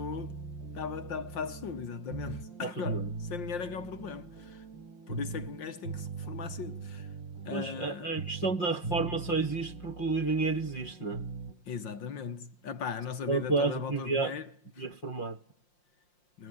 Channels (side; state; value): right; late; 5.7 ms